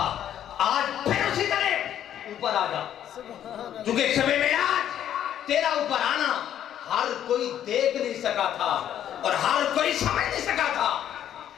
آج پھر اسی طرح اوپر آ جا، کیونکہ شب معراج تیرا اوپر آنا ہر کوئی دیکھ نہیں سکا تھا اور ہر کوئی سمجھ نہیں سکا تھا،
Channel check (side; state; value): right; quieter; 10.5 dB